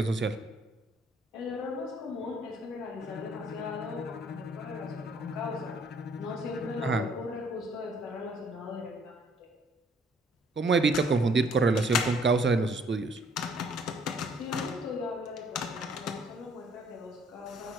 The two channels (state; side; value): normal; both; correlation 0.62